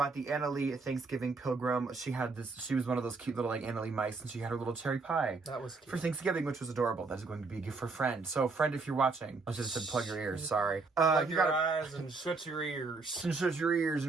the Anna Lee Thanksgiving Pilgrim. She was one of those cute little like Anna Lee mice, and she had her little cherry pie. That was cute. For Thanksgiving, which was adorable. That is going to be a gift for a friend. So friend, if you're watching, I should have said plug your ears, sorry. Plug your eyes and shut your ears. And shut your ears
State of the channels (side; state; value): left; quieter; 4.0 dB